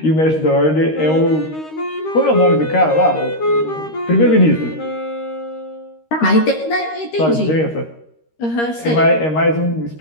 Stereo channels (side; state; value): right; late; 13 ms